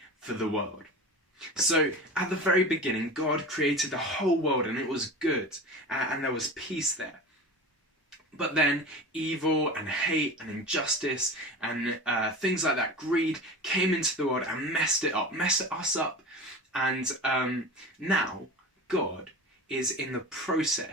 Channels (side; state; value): both; normal; correlation 0.32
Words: for the world. So at the very beginning, God created the whole world and it was good and there was peace there. But then evil and hate and injustice and things like that, greed, came into the world and messed us up. And now God is in the